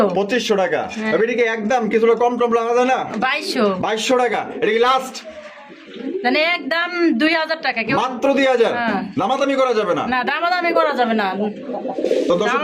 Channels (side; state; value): both; identical; correlation 1.00